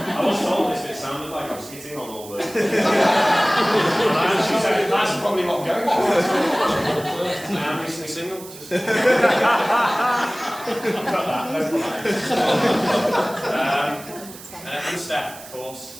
was told this, but it sounded like I was hitting on all the... And she said, that's probably what I'm going for. I am recently single. I'll cut that, no problem. And Steph, of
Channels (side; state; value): right; noise; hiss, 17 dB below the sound